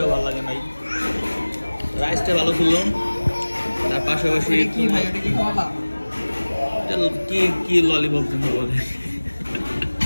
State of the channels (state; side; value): inverted; both; correlation -1.00